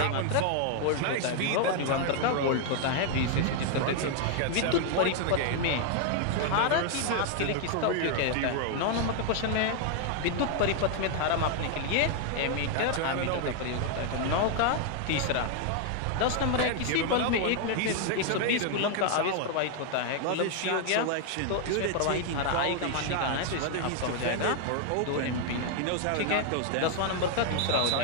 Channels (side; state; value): both; different; correlation 0.00